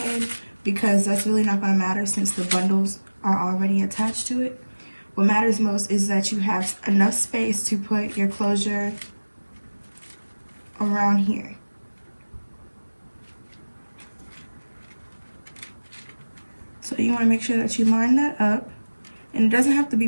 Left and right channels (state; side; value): inverted; both; correlation -1.00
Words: because that's really not going to matter since the bundles are already attached to it. What matters most is that you have enough space to put your closure around here. So you want to make sure that you line that up. And it doesn't have to be